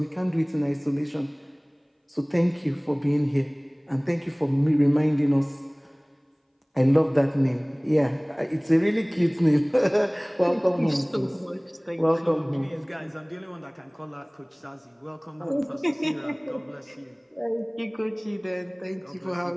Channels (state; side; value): identical; both; correlation 1.00